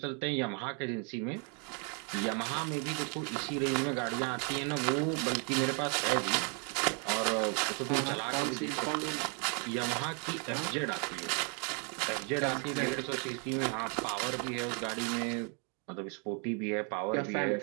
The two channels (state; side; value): quieter; left; 38.4 dB